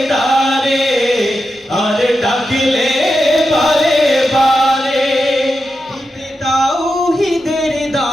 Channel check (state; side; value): normal; both; correlation 0.89